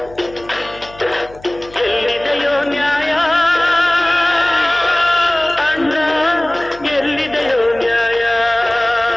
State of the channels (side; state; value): left; noise; hum, 22 dB below the sound